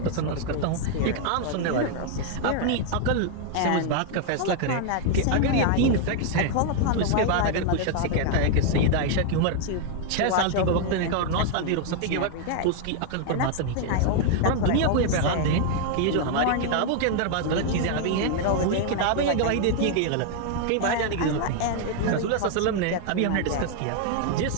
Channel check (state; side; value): different; both; correlation 0.00